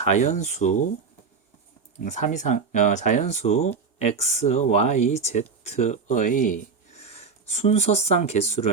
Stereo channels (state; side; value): quieter; left; 5.2 dB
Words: 3 이상 자연수 x, y, z의 순서쌍